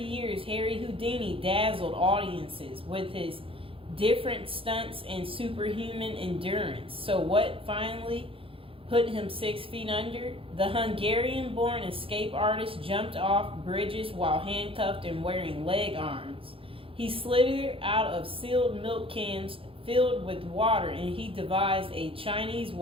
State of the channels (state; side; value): late; left; 0.27 ms